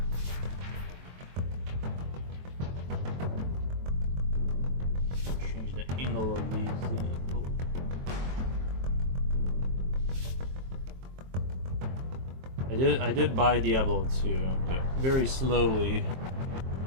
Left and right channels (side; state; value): left; late; 23 ms